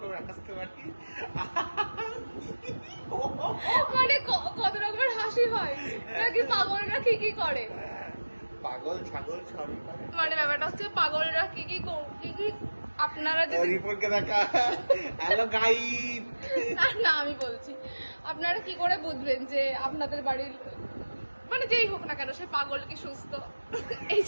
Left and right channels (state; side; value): inverted; both; correlation -1.00